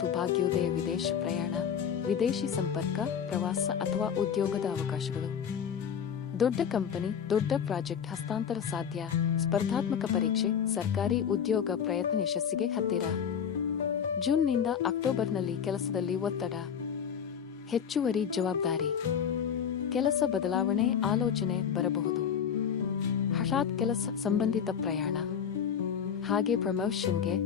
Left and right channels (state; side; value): quieter; right; 7.8 dB